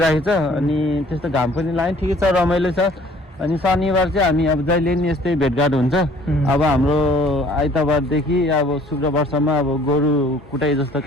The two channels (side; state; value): both; normal; correlation 0.56